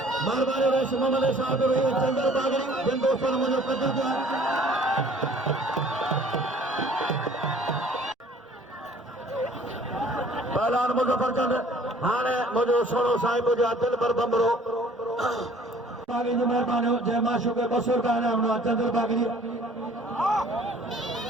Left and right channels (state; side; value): normal; both; correlation 0.54